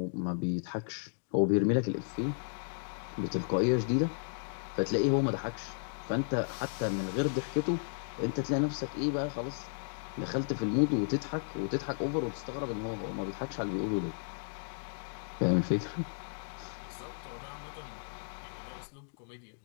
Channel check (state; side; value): silent; right; digital silence